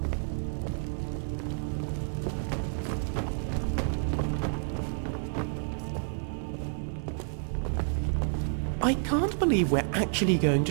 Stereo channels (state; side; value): silent; left; digital silence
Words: I can't believe we're actually going